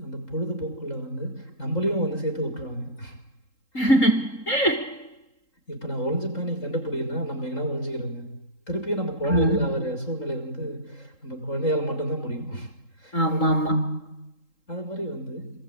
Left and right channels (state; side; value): late; right; 3.8 ms